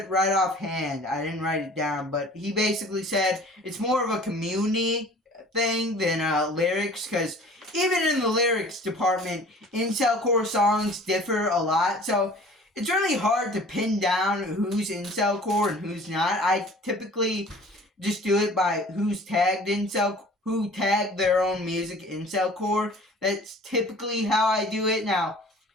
right offhand. I didn't write it down, but he basically said it's more of a community thing than lyrics, because even in the lyrics department, Incelcore songs differ a lot, so it's really hard to pin down who's Incelcore and who's not. I typically just do it by who's tagged Incelcore, who tagged their own music Incelcore. That's typically how I do it. Now,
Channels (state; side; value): normal; both; correlation 0.47